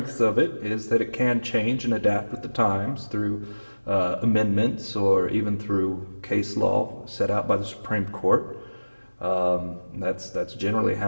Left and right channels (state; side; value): inverted; both; correlation -1.00